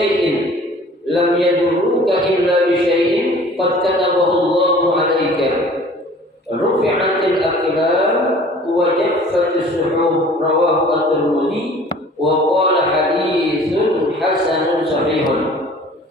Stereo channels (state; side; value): normal; both; correlation 0.49